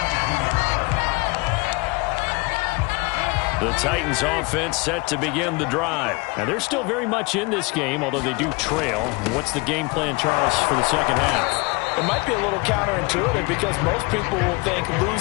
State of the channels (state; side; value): quieter; right; 26.6 dB